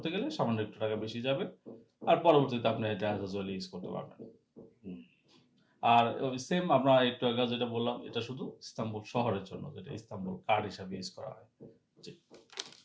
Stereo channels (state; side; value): identical; both; correlation 1.00